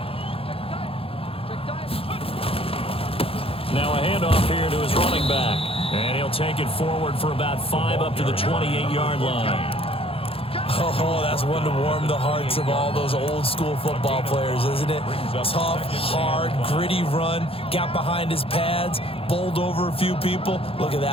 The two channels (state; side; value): late; right; 0.27 ms